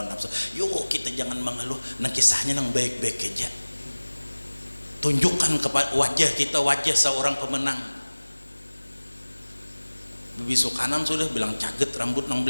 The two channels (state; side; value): inverted; both; correlation -1.00